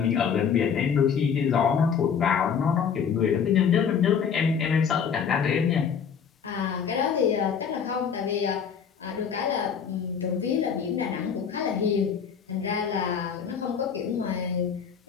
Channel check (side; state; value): right; quieter; 7.1 dB